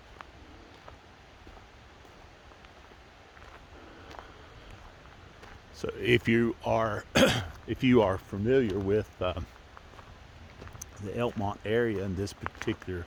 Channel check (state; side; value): identical; both; correlation 1.00